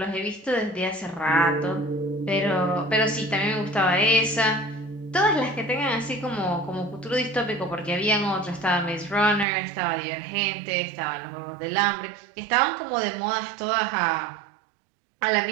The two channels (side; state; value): left; drops out; at 9.5 s